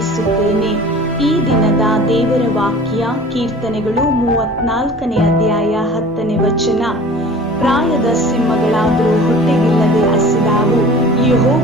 ಈ ದಿನದ ದೇವರ ವಾಕ್ಯ ಕೀರ್ತನೆಗಳು 34ನೇ ಅಧ್ಯಾಯ 10ನೇ ವಚನ. ಪ್ರಾಯದ ಸಿಂಹಗಳಾದರೂ ಹೊಟ್ಟೆಗಿಲ್ಲದೆ ಹಸಿದಾವು,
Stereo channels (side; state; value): both; normal; correlation 0.43